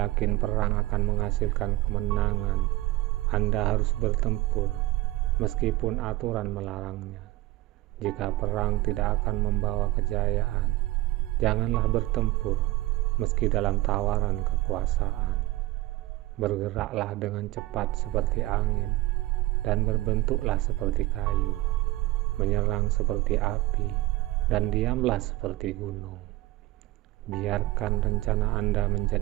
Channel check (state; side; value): quieter; left; 18.3 dB